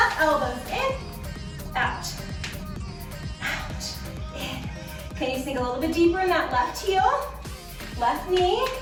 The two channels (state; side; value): identical; both; correlation 1.00